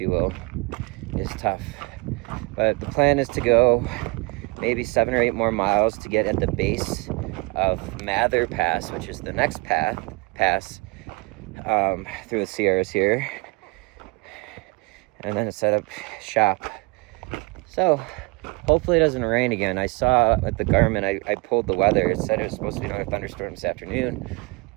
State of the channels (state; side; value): quieter; left; 27.7 dB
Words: will, is tough. But the plan is to go maybe 7 or 8 more miles to get at the base of Mather Pass, which is the next pass through the Sierras here, and then set up shop. So hopefully it doesn't rain again. I saw at the Garmin, I pulled the weather. It said it was supposed to be another thunderstorm this afternoon.